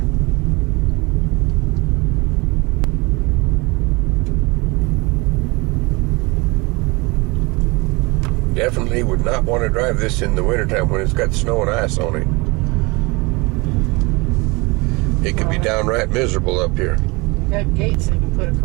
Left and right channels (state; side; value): quieter; left; 25.8 dB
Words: Definitely would not want to drive this in the wintertime when it's got snow and ice on it. It could be downright miserable up here. Got gates they can put